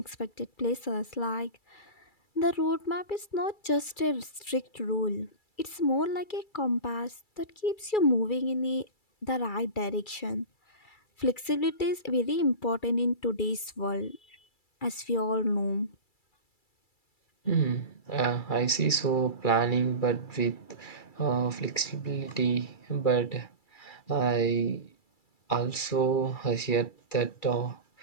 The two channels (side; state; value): right; late; 2.3 ms